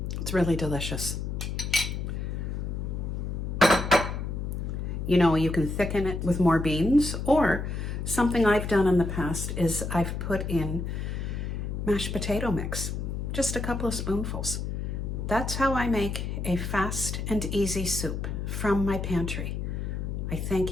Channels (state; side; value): noise; left; hum, 3 dB below the sound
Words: It's really delicious. You know, you can thicken it with more beans, or something I've done in the past is I've put in mashed potato mix, just a couple of spoonfuls. That's how I make a fast and easy soup from my pantry. I